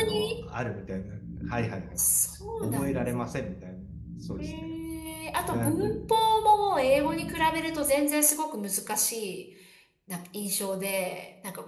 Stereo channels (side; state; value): both; identical; correlation 1.00